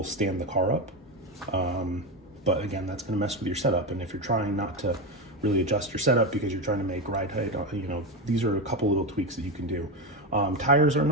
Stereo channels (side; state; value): both; normal; correlation 0.15